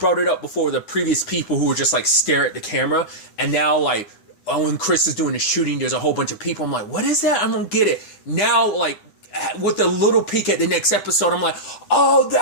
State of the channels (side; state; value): right; late; 9.8 ms